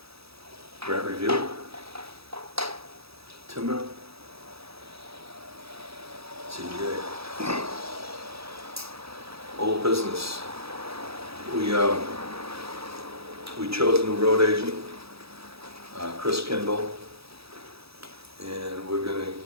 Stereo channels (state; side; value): late; left; 0.77 ms